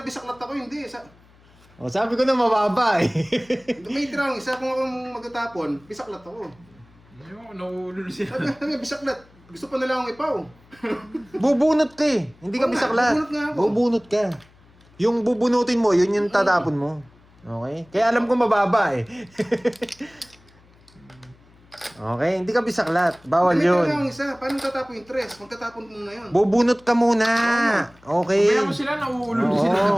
bisaklat ako, hindi. O, sabi ko na mababa eh. May tira isa kung ako magtatapon, bisaklat ako. Ayoko, nauulol siya. Sabi, bisaklat. Gusto pa nila akong ipaw. Bubunot ka eh. Hindi ka Oo nga, bisaklat. bubunot nga ako. Bubunot ka. Yung bubunutin mo, yun yung tatapon mo. Okay? Kaya alam ko mababa eh. Okay, hindi ka bisaklat. Bawal May yun. tira akong isa. Paano tatapon yung tres? Magtatapon mo na yun. Bubunot ka muna. Okay. Kaya mo sila, nauulol Oo. sila.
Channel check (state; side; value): noise; left; hum, 28 dB below the sound